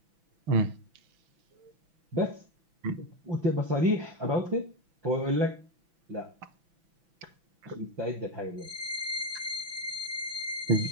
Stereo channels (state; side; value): late; left; 6.0 ms